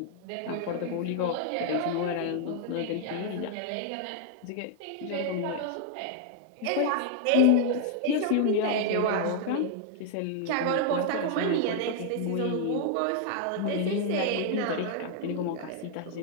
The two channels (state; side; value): different; both; correlation 0.00